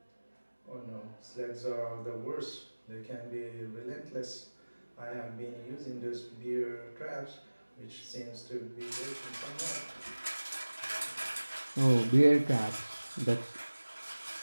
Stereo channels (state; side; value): inverted; both; correlation -1.00